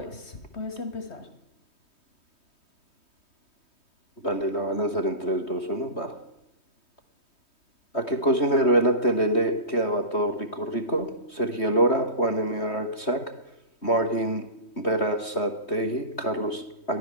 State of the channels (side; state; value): right; late; 3.2 ms